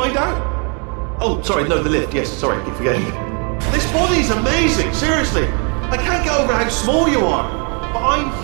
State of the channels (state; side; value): quieter; left; 37.1 dB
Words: out. Oh, sorry, no, the lift. Yes, sorry, I keep forgetting. This body's amazing, seriously. I can't get over how small you are, but I'm